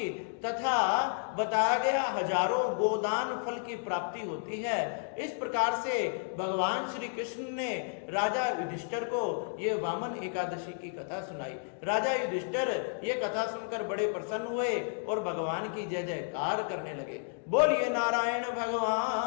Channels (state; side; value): silent; right; digital silence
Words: तथा बताया गया हजारों गोदान फल की प्राप्ति होती है। इस प्रकार से भगवान श्री कृष्ण ने राजा युधिष्ठिर को ये वामन एकादशी की कथा सुनाई। राजा युधिष्ठिर ये कथा सुनकर बड़े प्रसन्न हुए और भगवान की जय जयकार करने लगे। बोलिए नारायण